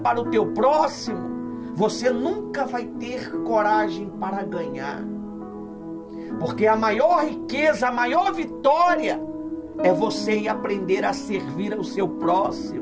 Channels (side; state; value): both; identical; correlation 1.00